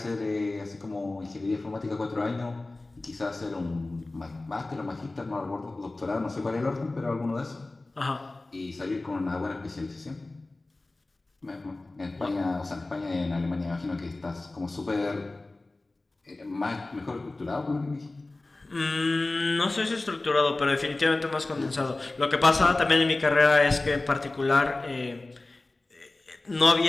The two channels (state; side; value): quieter; right; 3.0 dB